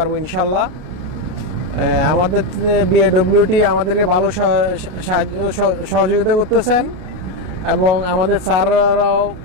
ইনশাল্লাহ। আমাদের বিএডব্লিউটি আমাদেরকে ভালো সহযোগিতা করতেছেন এবং আমাদের স্যাররাও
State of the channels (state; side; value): late; left; 33 ms